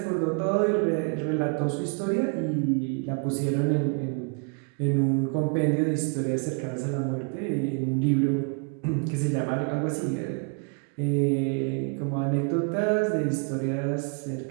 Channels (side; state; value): left; quieter; 36.7 dB